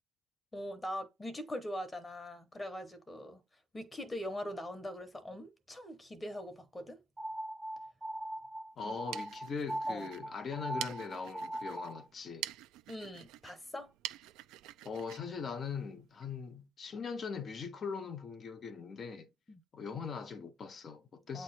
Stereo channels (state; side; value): normal; both; correlation 0.76